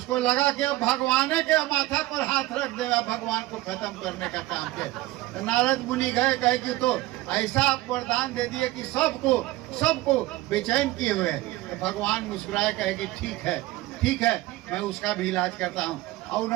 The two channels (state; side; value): quieter; left; 18.1 dB